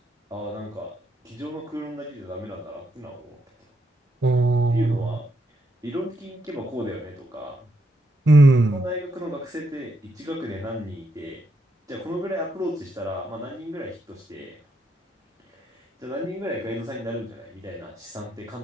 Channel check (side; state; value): both; normal; correlation 0.79